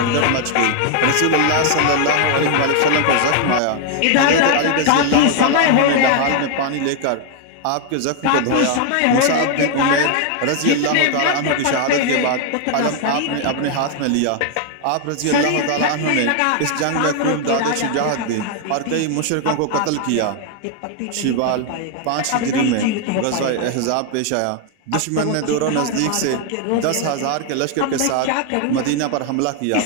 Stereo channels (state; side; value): different; both; correlation 0.00